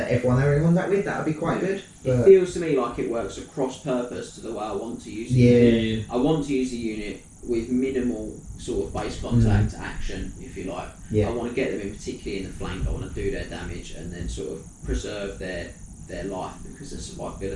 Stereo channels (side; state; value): both; identical; correlation 1.00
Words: they were in contact with, that would be quite good. It But feels to me like it works across purpose to the way I want to use it. yeah, I want to use a unit with minimal sort of base contact action, if you like. Yeah. I want to get them in particularly in the flank. I want to do their damage and then sort of preserve their life because the